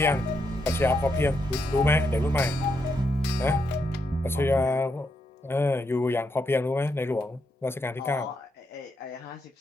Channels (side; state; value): both; normal; correlation 0.80